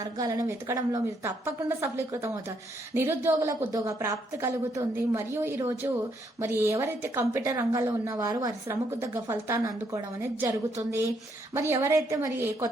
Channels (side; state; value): both; normal; correlation 0.73